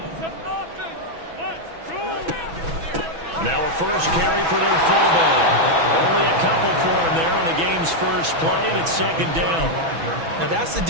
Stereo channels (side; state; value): left; late; 6.1 ms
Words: Now a first carry for their fullback. Only a couple for him there on the game's first play, and it's 2nd down. Now that's the